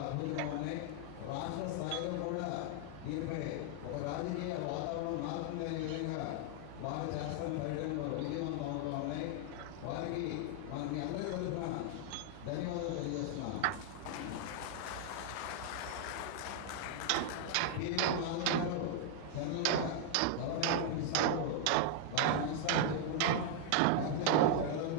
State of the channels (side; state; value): both; different; correlation 0.00